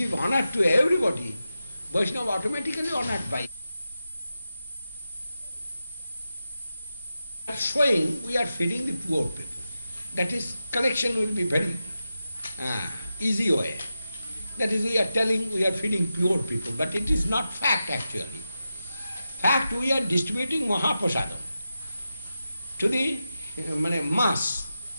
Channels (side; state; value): both; inverted; correlation -0.90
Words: honor to everybody, Vaishnava automatically honored by you. Showing we are feeding the poor people. That is, collection will be very easy way. That is, we are telling we are feeding poor people, but it is not fact actually. Fact, we are distributing Mahaprasadam to the mass.